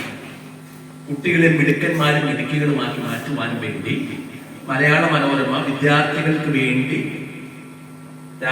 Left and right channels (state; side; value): identical; both; correlation 1.00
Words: കുട്ടികളെ മിടുക്കന്മാരും മിടുക്കികളുമാക്കി മാറ്റുവാനും വേണ്ടി മലയാള മനോരമ വിദ്യാർത്ഥികൾക്ക് വേണ്ടി